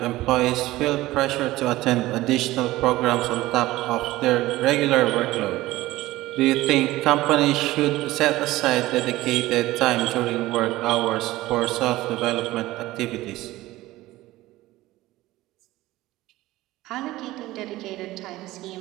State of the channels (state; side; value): quieter; left; 17.4 dB